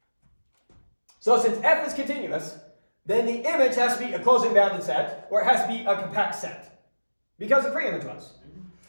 So since f is continuous, then the image has to be a closed and bounded set, or it has to be a compact set, because the pre-image was.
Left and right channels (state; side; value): inverted; both; correlation -1.00